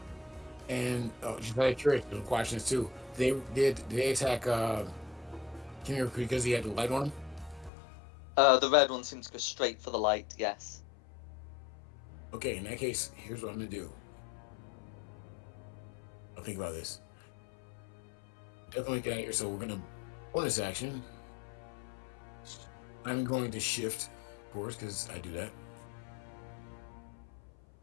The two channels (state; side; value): drops out; right; at 7.7 s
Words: And just out of curiosity, some questions too. Did they attack Kimmy because he had the light on him? The red one seems to go straight for the light. Yes. Okay, in that case, here's what I'm gonna do. I'll think about this. Definitely get out of here. So we're gonna bonus action. I'm going to shift, of course, because I do that.